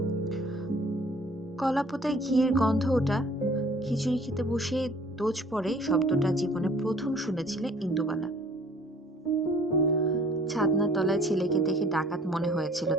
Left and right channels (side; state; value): both; normal; correlation 0.54